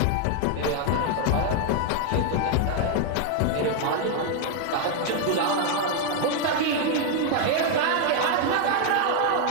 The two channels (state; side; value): different; both; correlation 0.00